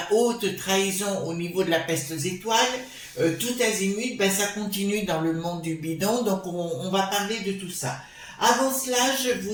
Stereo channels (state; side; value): identical; both; correlation 1.00